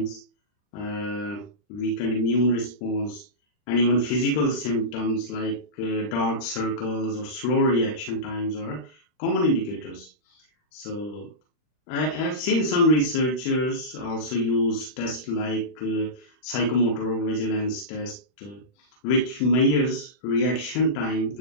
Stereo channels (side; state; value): right; late; 39 ms